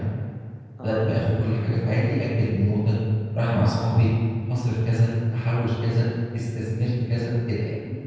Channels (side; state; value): both; identical; correlation 1.00